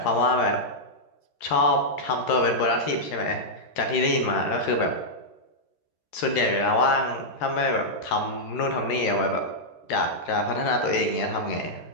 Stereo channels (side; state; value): right; late; 13 ms